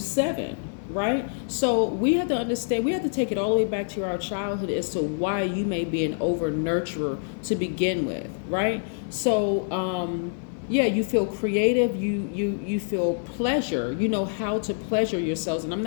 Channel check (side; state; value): right; silent; 61 dB below the other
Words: Right? So we have to understand, we have to take it all the way back to our childhood as to why you may be an over nurturer to begin with, right? So you feel creative, you feel pleasure, you know how to pleasure yourselves. And I'm